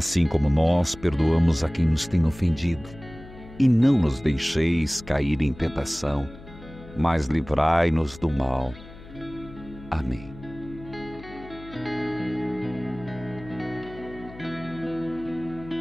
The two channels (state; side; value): noise; left; hum, 18 dB below the sound